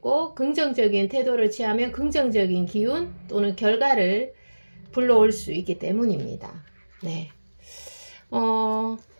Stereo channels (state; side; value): inverted; both; correlation -1.00